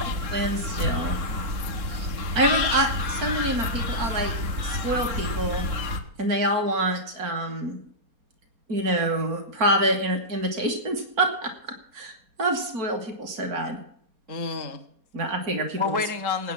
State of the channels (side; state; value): left; late; 4.3 ms